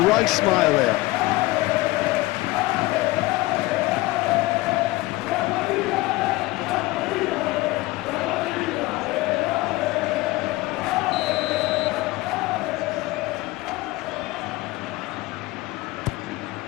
right smile there.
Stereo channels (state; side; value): quieter; right; 20.1 dB